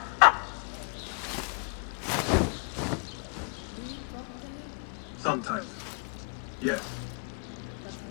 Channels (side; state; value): right; quieter; 38.9 dB